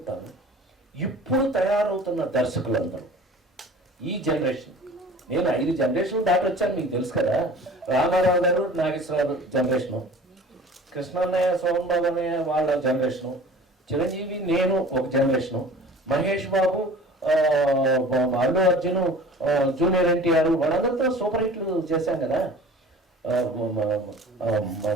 ఇప్పుడు తయారవుతున్న దర్శకులందరూ ఈ జనరేషన్, నేను 5 జనరేషన్ దాటి వచ్చాను, మీకు తెలుసు కదా. రామారావు గారు, నాగేశ్వరరావు జనరేషను, కృష్ణన్నయ్య, సోమబాబు అన్నయ్య వాళ్ళ జనరేషను, చిరంజీవి నేను ఒక జనరేషను, మహేష్ బాబు, అల్లు అర్జున్, జూనియర్ ఎన్టీఆర్ వాళ్ళందరితో సూపర్ హిట్లు చేశాం కదా.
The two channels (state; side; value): normal; both; correlation 0.43